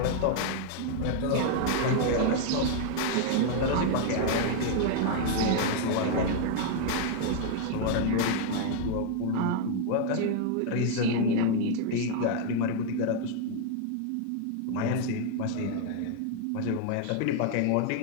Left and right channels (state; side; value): different; both; correlation 0.00